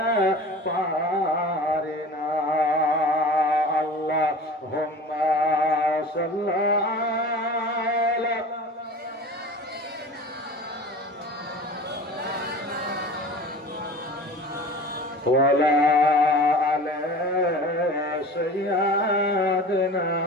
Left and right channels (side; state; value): both; normal; correlation 0.38